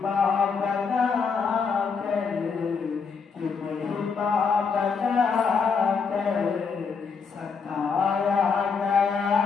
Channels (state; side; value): quieter; right; 5.5 dB